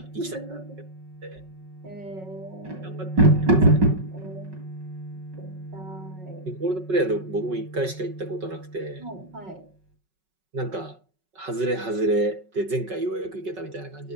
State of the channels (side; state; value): left; late; 5.4 ms